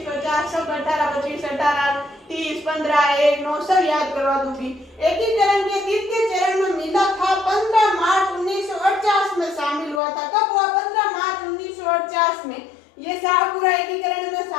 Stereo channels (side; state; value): right; drops out; at 10.0 s